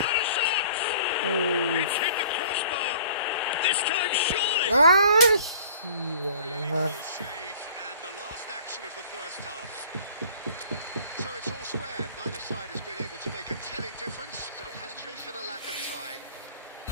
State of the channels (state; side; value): inverted; both; correlation -0.51